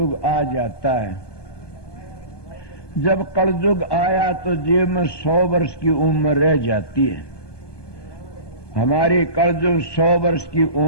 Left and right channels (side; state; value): right; late; 1.2 ms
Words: आ जाता है। जब कलयुग आया तो जीव में 100 वर्ष की उम्र रह जाती है। हमारी कलयुग 100 वर्ष की